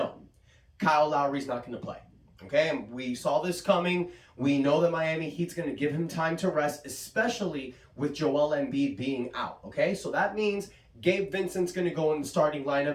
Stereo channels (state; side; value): identical; both; correlation 1.00